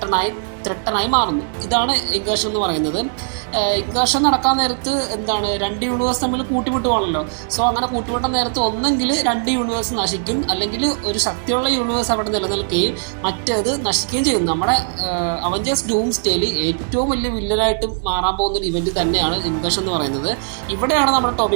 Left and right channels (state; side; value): silent; left; 66 dB below the other